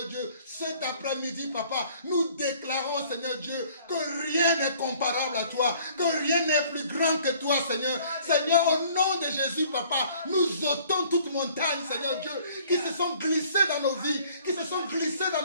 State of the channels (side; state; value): both; inverted; correlation -0.56